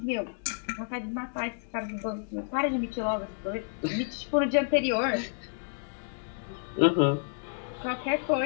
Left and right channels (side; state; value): right; silent; digital silence